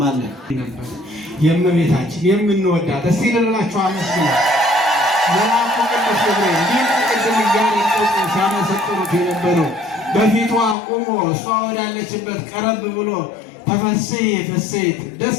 የእመቤታችን የምንወዳት እስቲ ልላችሁ አመስግኑ። መልአኩ ቅዱስ ገብርኤል እንዲህ ቅድም እያነጠቁ ሲያመሰጥሩት የነበረው በፊቷ ቆሞ እሷ ወዳለችበት ቀረብ ብሎ ተፈሥሒ ፍሥሕት ደስ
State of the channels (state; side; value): drops out; right; at 10.8 s